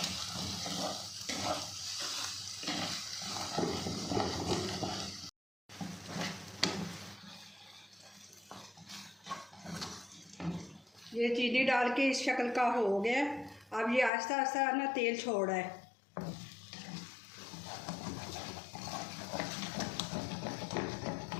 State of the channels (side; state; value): right; drops out; at 14.1 s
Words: ये चीनी डाल के इस शक्ल का हो गया। अब ये आहिस्ता आहिस्ता ना तेल छोड़ रहा है।